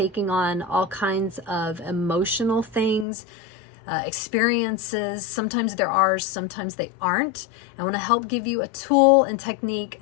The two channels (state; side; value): drops out; right; at 3.1 s